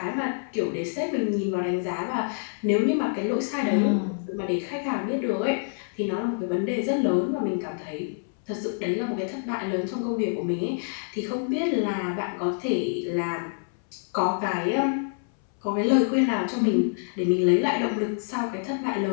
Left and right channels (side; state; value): right; silent; 59 dB below the other